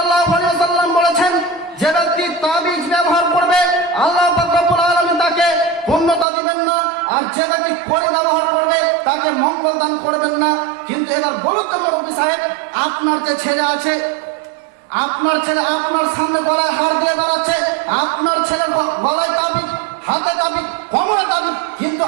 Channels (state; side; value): drops out; left; at 6.2 s